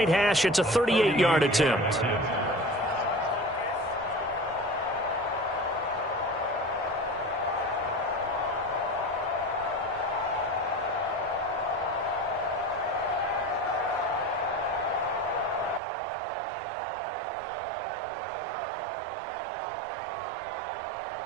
hash, it's a 38-yard attempt.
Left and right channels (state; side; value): drops out; left; at 15.8 s